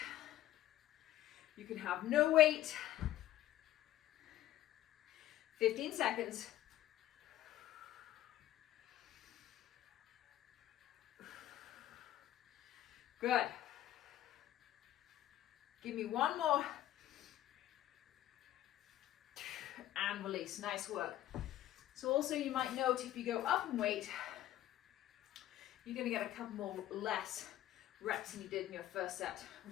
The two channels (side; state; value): right; quieter; 13.5 dB